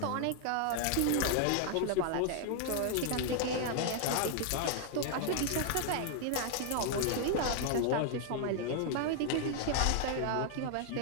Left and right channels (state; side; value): different; both; correlation 0.00